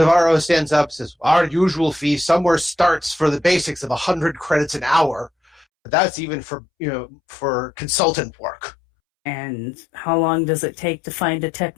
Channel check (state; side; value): drops out; right; at 5.7 s